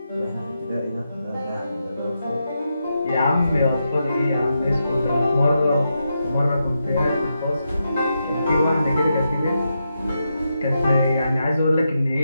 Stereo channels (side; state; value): both; inverted; correlation -0.85